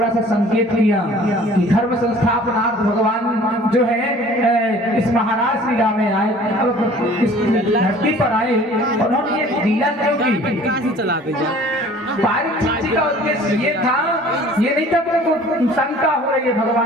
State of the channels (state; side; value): normal; both; correlation 0.49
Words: सा संकेत किया कि धर्म संस्थापनार्थ भगवान जो है इस महाराज लीला में आए, अब इस धरती पर आए और उन्होंने ये लीला क्यों की? पारक जी का उद्देश्य ये था, ये नहीं था कि शंका हो रही है